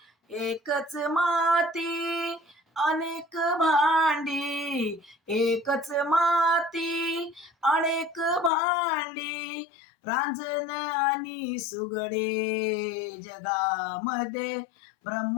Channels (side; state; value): right; drops out; at 8.5 s